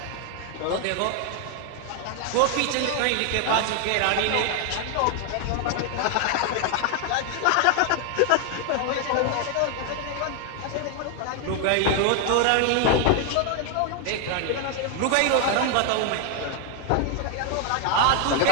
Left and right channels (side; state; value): both; different; correlation 0.00